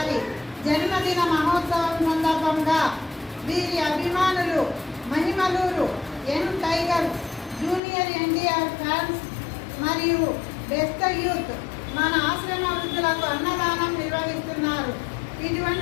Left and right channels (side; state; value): right; drops out; at 7.8 s